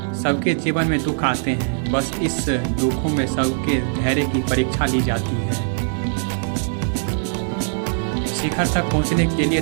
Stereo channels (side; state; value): left; silent; 65 dB below the other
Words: सबके जीवन में दुख आते हैं, बस इस दुखों में सबके धैर्य की परीक्षा ली जाती है। शिखर तक पहुंचने के लिए